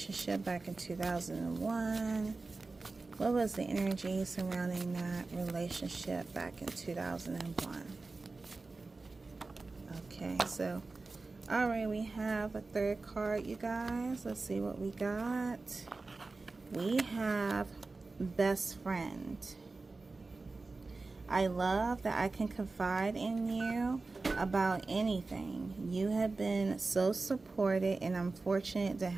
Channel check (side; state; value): left; quieter; 3.7 dB